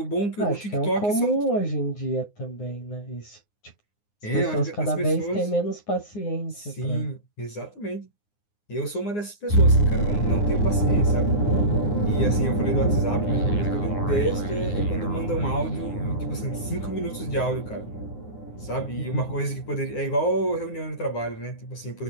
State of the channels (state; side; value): late; right; 9.7 ms